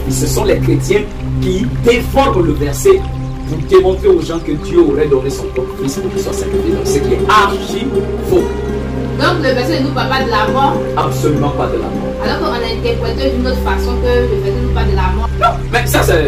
Ce sont les chrétiens qui déforment le verset pour démontrer aux gens que Dieu aurait donné son propre Fils pour qu'il soit sacrifié. Donc ce qui est archi faux. Donc le verset ne nous parle pas de la mort? Absolument pas de la mort. Alors qu'on a interprété d'une autre façon que le verset ne nous parle de la mort. Non, mais ça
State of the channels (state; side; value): identical; both; correlation 1.00